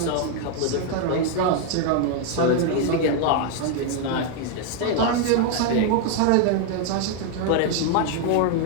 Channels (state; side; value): different; both; correlation 0.01